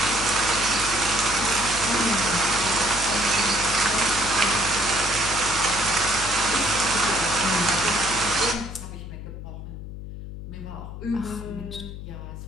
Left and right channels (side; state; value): left; noise; hum, 10 dB below the sound